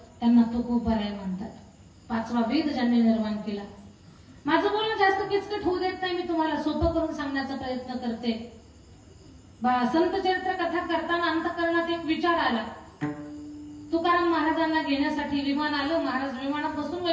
त्यांना तुकोबाराय म्हणतात. 5वा वेद ज्यांनी निर्माण केला. माझं बोलणं जास्त किचकट होऊ देत नाही, मी तुम्हाला सोपं करून सांगण्याचा प्रयत्न करते. संत चरित्र कथा करताना अंतःकरणात एक विचार आला. तुकाराम महाराजांना घेण्यासाठी विमान आलं. महाराज विमानात बसून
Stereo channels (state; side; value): identical; both; correlation 1.00